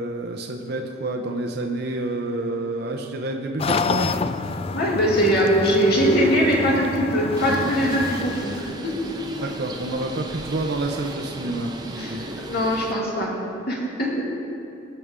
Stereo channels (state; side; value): normal; both; correlation 0.39